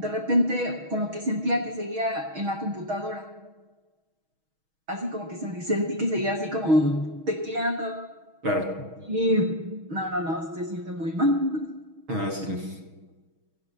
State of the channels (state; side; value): late; left; 6.3 ms